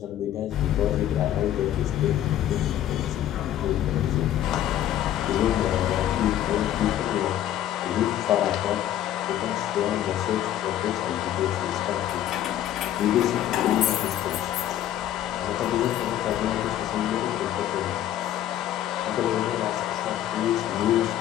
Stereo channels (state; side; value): quieter; right; 11.9 dB